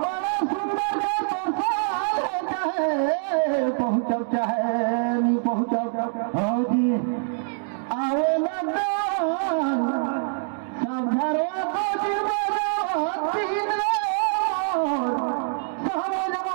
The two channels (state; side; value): silent; left; digital silence